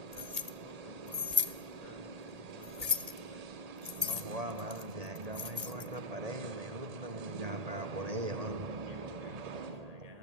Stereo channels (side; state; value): left; late; 1.8 ms